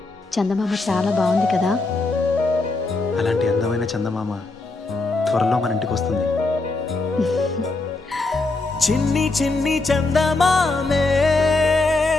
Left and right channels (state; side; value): quieter; right; 3.3 dB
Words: చందమామ చాలా బాగుంది కదా. అలాంటి అందమైన చందమామ త్వరలో మన ఇంటికి వస్తుంది. చిన్ని చిన్ని చందమామే